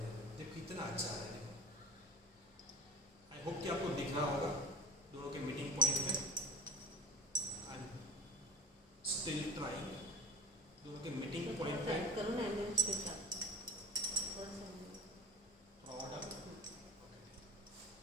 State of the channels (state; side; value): normal; both; correlation 0.33